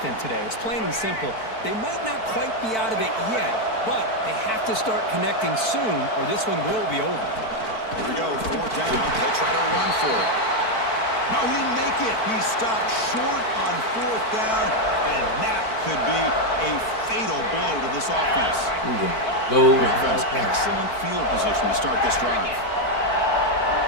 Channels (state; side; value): late; right; 4.5 ms